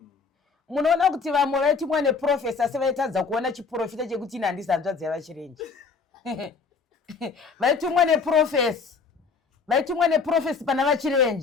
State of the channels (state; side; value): quieter; right; 5.0 dB